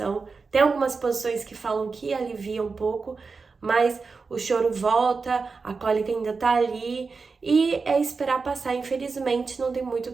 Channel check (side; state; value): left; quieter; 4.6 dB